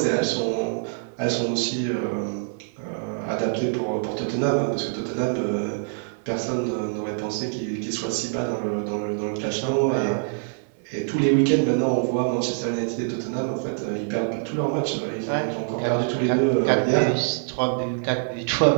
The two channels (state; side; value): silent; left; digital silence